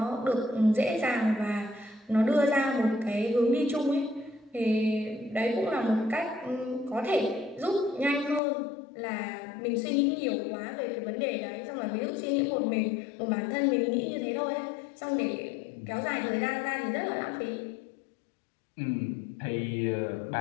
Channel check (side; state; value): right; drops out; at 8.4 s